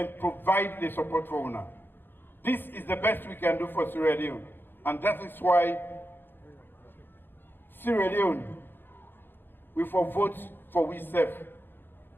provide the support for UNA. This is the best we can do for Sierra Leone. And that is why Sierra Leone we for vote for we self.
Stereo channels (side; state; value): right; late; 0.099 ms